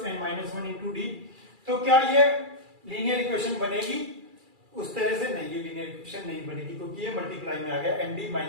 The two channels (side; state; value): left; late; 2.4 ms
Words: n minus 1 into D. तो क्या ये लीनियर इक्वेशन बनेगी, उस तरह से नहीं, ये लीनियर इक्वेशन नहीं बनेगी क्योंकि ये मल्टीप्लाई में आ गया एन डी